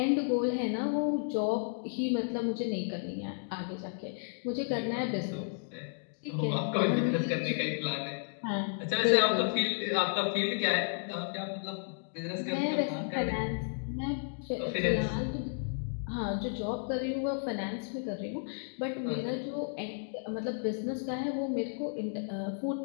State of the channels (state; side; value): silent; right; digital silence